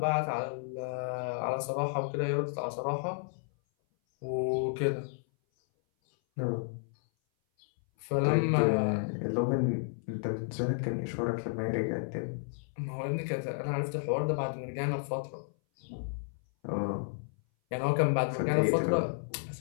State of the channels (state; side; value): silent; right; 56 dB below the other